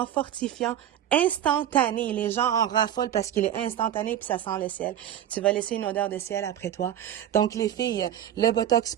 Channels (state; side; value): quieter; left; 10.9 dB